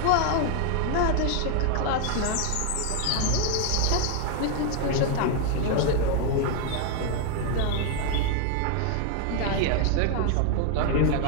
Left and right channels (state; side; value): different; both; correlation 0.00